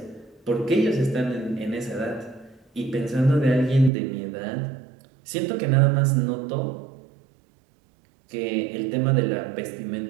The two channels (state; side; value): drops out; left; at 3.9 s